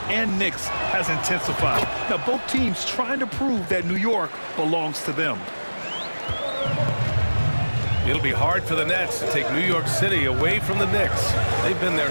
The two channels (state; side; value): inverted; both; correlation -1.00